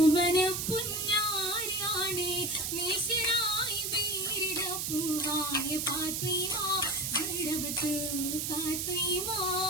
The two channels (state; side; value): noise; right; hiss, 1 dB below the sound